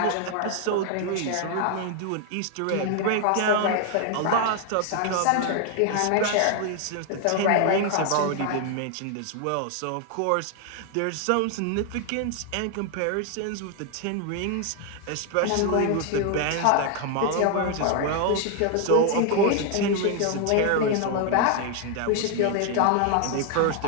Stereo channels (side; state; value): both; different; correlation 0.00